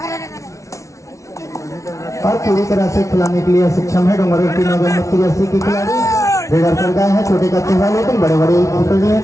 और पूरी तरह से खिलाने के लिए सक्षम है डोंगरगढ़ की 9 नंबर की जर्सी की खिलाड़ी रेडर कर गए हैं। छोटे कच्चे हैं लेकिन बड़े बड़े खिलाड़ी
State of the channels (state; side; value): late; right; 0.15 ms